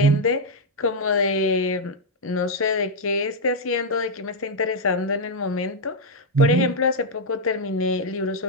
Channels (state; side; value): normal; both; correlation -0.01